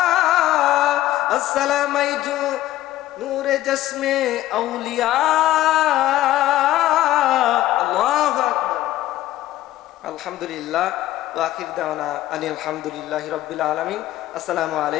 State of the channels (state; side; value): quieter; right; 14.7 dB